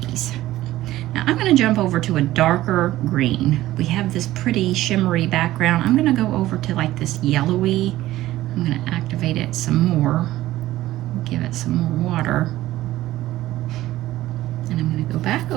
Now I'm going to jump over to a darker green. We have this pretty shimmery background. I'm going to go over to like this yellowy. I'm going to activate it some more, give it some more water, and I'm going to go back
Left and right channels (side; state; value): left; quieter; 15.5 dB